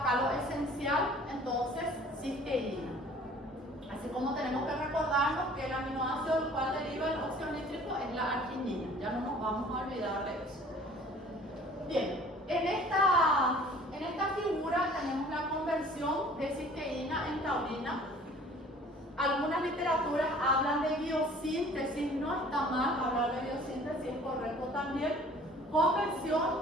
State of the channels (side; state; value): both; normal; correlation 0.50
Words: lo esencial, entonces cisteína. Así como tenemos que recordarnos que el aminoácido del cual deriva el óxido nítrico es la arginina. Ya no nos vamos a olvidar de eso. Bien, en esta figura tenemos la conversión de cisteína en taurina. Algunas literaturas hablan de biosíntesis, no está mal hablar de biosíntesis, es correcto también.